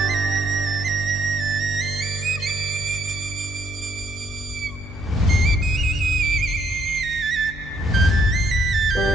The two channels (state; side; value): normal; both; correlation 0.68